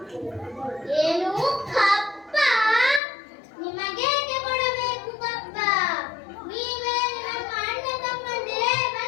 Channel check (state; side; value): drops out; right; at 3.0 s